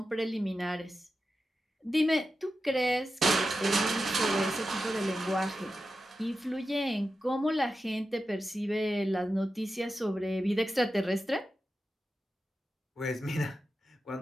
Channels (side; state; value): both; normal; correlation 0.91